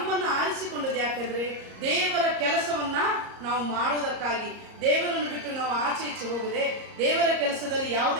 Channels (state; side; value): late; left; 34 ms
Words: ಆರಿಸಿಕೊಂಡದ್ದು. ಯಾಕಂದ್ರೆ ದೇವರ ಕೆಲಸವನ್ನ ನಾವು ಮಾಡುವುದಕ್ಕಾಗಿ, ದೇವರನ್ನು ಬಿಟ್ಟು ನಾವು ಆಚೆ ಈಚೆ ಹೋಗದೆ, ದೇವರ ಕೆಲಸದಲ್ಲಿ